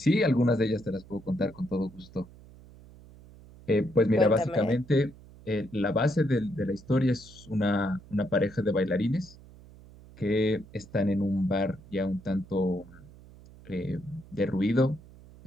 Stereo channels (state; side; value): noise; right; hum, 21 dB below the sound